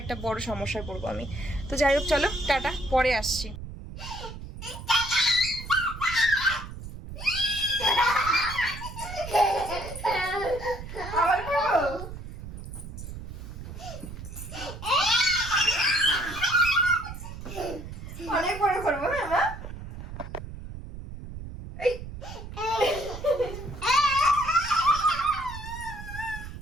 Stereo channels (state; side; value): noise; right; rumble, 10 dB below the sound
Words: একটা বড় সমস্যায় পড়বো আমি। তো যাই হোক চলো টাটা, পরে আসছি। অনেক বড় করবো হ্যাঁ মা।